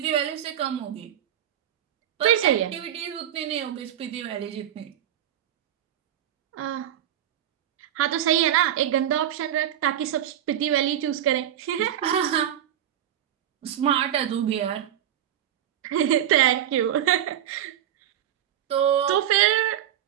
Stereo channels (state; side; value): quieter; left; 11.0 dB